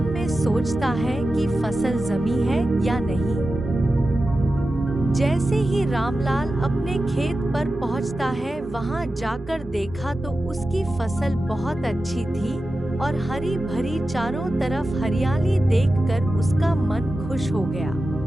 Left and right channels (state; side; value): normal; both; correlation 0.93